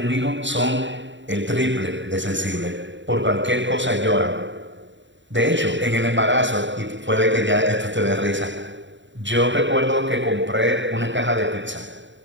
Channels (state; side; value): late; left; 0.54 ms